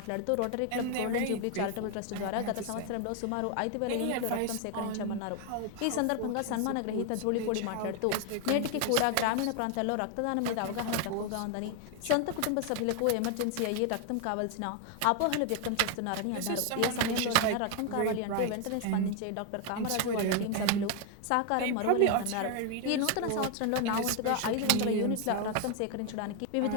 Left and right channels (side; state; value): both; different; correlation 0.01